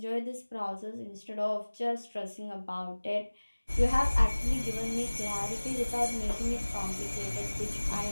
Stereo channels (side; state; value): both; inverted; correlation -1.00